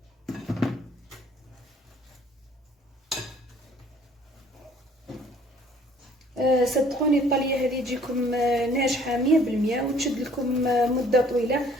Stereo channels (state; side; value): normal; both; correlation 0.57